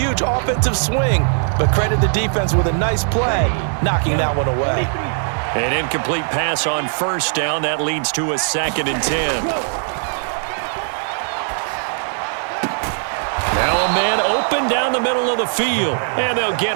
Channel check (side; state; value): left; silent; 66 dB below the other